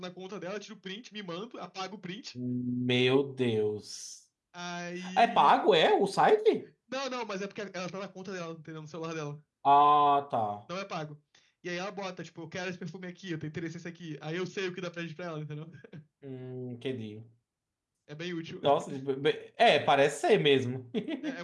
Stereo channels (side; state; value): both; identical; correlation 1.00